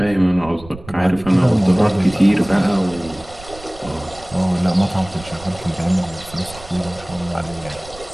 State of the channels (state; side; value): noise; right; rumble, 18 dB below the sound